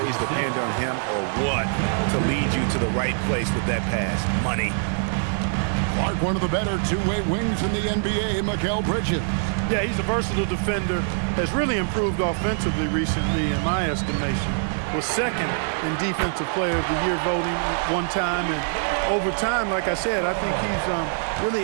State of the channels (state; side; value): silent; left; digital silence